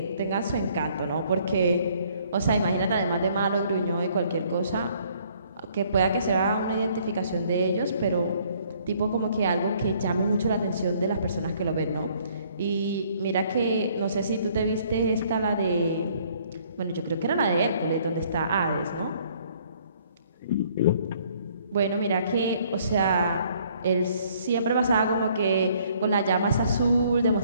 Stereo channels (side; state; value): both; inverted; correlation -0.62